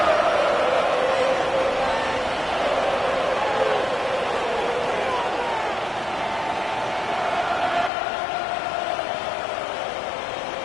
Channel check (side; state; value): right; drops out; at 7.9 s